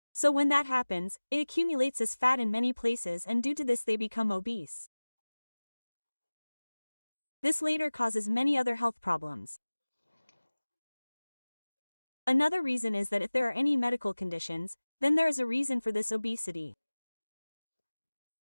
So when that happens, it accumulates as fat in many places and due to this they become obese. This later causes many other health problems. Another reason is that if there are any medical conditions, then there is a reason for this obesity.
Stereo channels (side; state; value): both; inverted; correlation -1.00